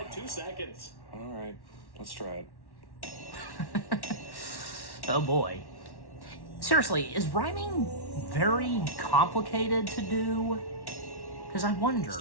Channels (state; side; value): late; right; 1.1 ms